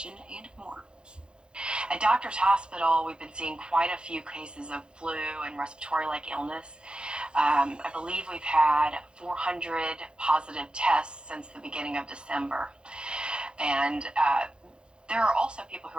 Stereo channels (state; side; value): late; left; 0.051 ms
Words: and more. At Doctors Hospital, we've been seeing quite a few cases of flu and respiratory-like illness. I believe we've had 400 positive tests since the beginning of December. And there are also people who